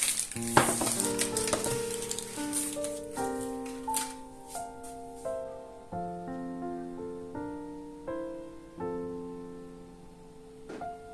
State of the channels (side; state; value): both; identical; correlation 1.00